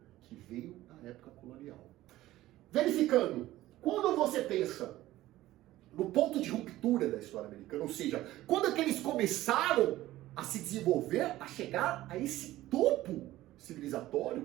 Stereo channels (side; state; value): left; quieter; 15.8 dB